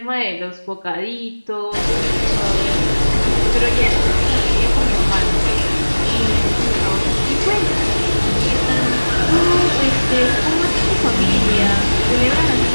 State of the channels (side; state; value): both; inverted; correlation -1.00